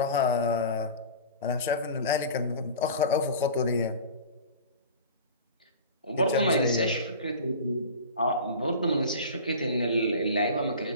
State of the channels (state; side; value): inverted; both; correlation -0.36